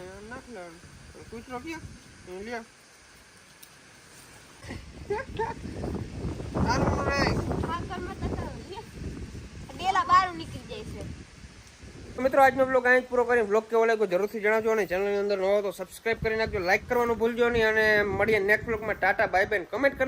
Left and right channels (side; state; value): both; identical; correlation 1.00